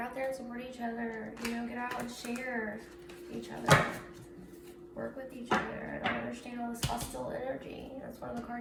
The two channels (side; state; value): both; identical; correlation 1.00